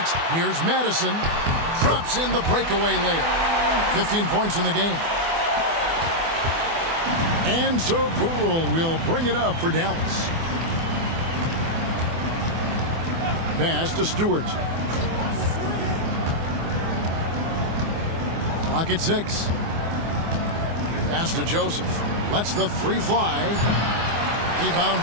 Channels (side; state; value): left; late; 24 ms